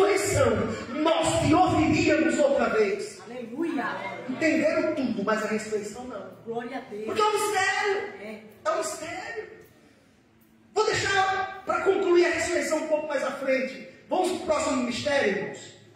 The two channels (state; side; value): identical; both; correlation 1.00